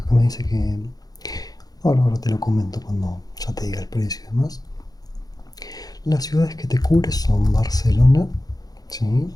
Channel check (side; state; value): right; late; 0.18 ms